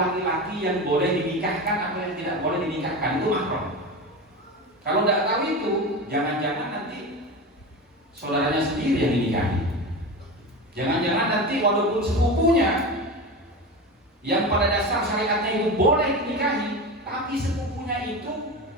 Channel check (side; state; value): both; normal; correlation 0.25